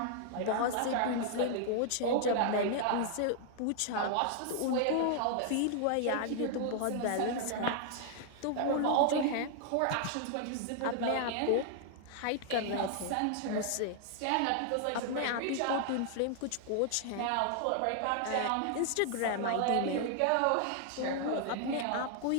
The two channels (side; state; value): both; different; correlation 0.00